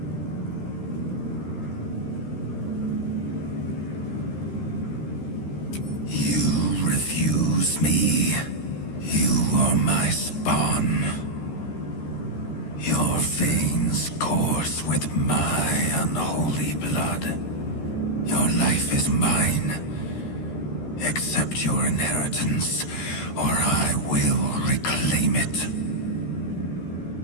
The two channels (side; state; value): right; late; 13 ms